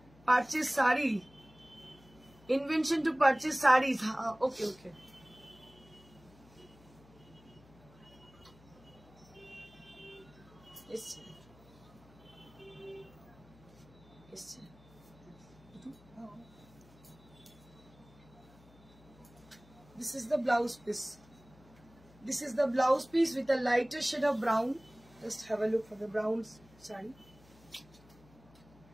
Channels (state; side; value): noise; left; hum, 24 dB below the sound